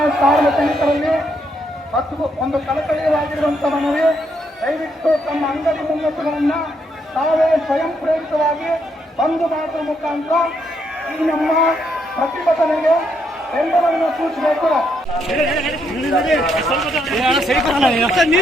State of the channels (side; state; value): both; normal; correlation 0.76